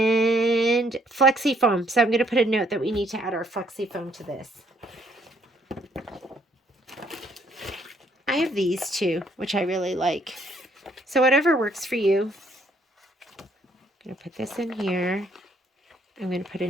flexi foam. So I'm going to put a note that we need to add our flexi foam to this. I have these too, which I really like. So whatever works for you. I'm going to put this in here. I'm going to put a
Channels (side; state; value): both; normal; correlation 0.67